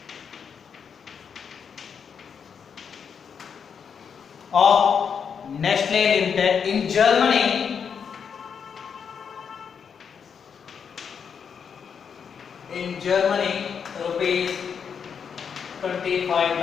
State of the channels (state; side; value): quieter; right; 6.9 dB